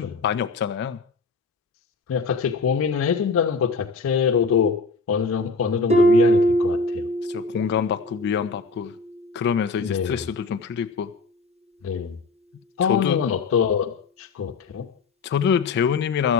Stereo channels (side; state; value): right; quieter; 4.0 dB